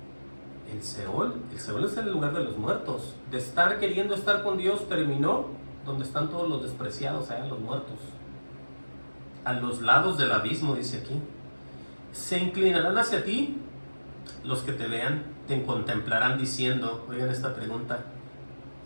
¿el Seol? El Seol es el lugar de los muertos. De estar queriendo estar con Dios terminó donde están todos los despreciados, allá los muertos. A los lados del abismo, dice aquí. Se inclinarán hacia ti los que te vean, te contemplarán diciendo, oigan esta pregunta,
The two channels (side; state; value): both; inverted; correlation -1.00